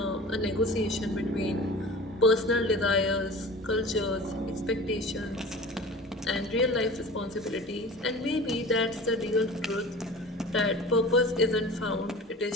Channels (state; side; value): normal; both; correlation 0.38